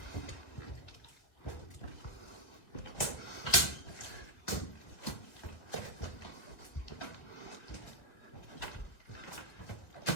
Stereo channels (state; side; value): late; right; 2.1 ms